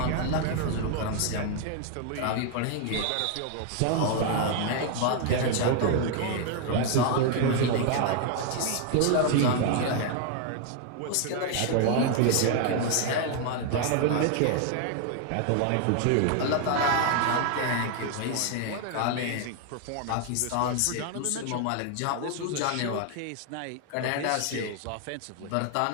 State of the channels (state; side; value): different; both; correlation 0.00